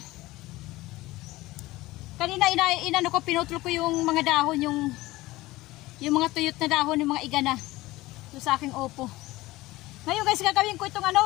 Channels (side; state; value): right; quieter; 18.8 dB